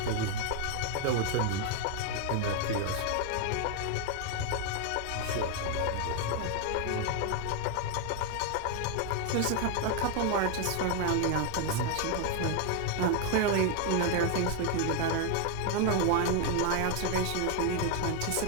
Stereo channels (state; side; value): different; both; correlation 0.01